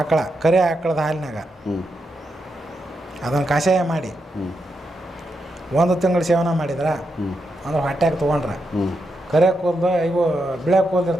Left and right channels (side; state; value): both; normal; correlation 0.84